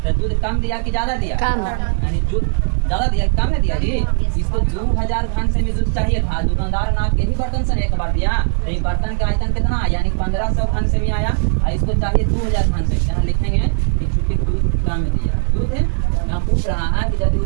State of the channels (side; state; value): left; silent; 64 dB below the other